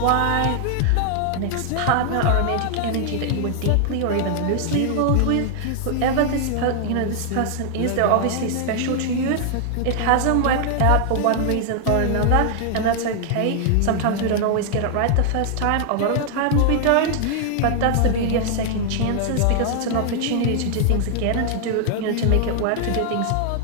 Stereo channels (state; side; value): different; both; correlation 0.00